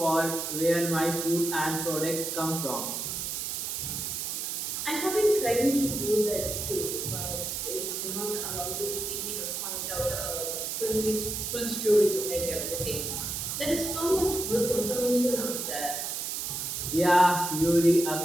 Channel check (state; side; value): noise; right; hiss, 3 dB below the sound